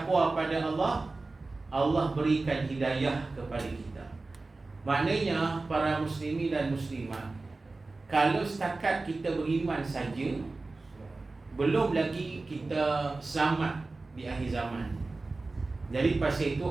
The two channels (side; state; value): left; quieter; 3.4 dB